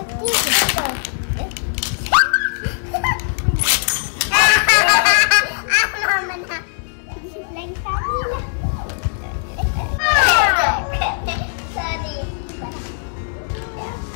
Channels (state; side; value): silent; right; digital silence